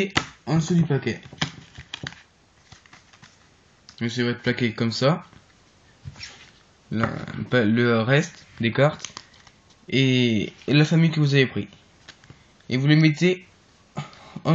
en dessous du paquet. Donc ça va être plaqué comme ça. Le reste des cartes et la famille que vous avez pris. Et vous les mettez en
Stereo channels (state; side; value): identical; both; correlation 1.00